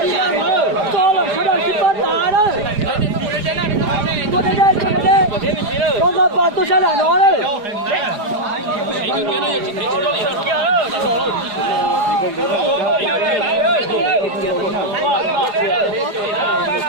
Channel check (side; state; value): left; late; 4.9 ms